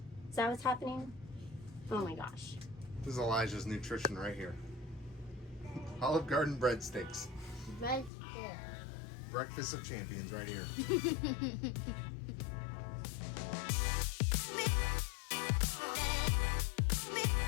Is that what's happening? Oh my gosh. This is Elijah's nutrition right here. Olive Garden breadsticks. Breakfast of champions right here.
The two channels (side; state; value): right; drops out; at 8.1 s